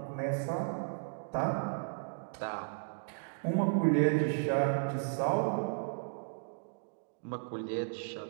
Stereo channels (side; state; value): left; silent; digital silence